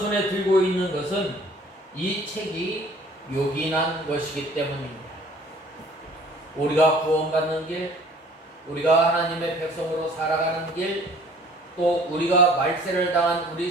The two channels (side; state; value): both; normal; correlation 0.52